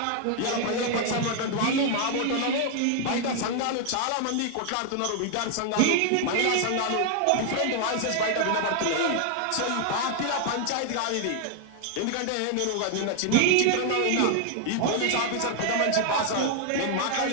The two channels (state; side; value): different; both; correlation 0.00